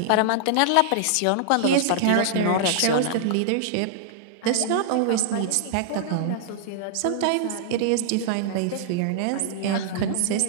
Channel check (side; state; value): both; different; correlation -0.01